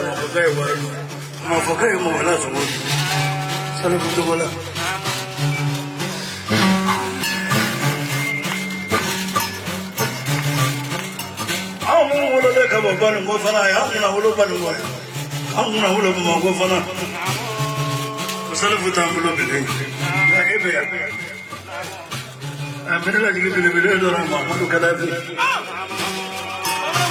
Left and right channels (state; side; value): identical; both; correlation 1.00